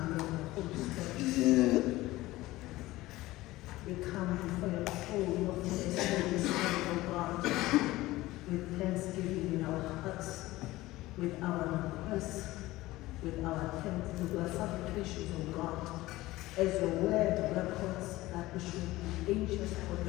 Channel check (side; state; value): right; quieter; 18.1 dB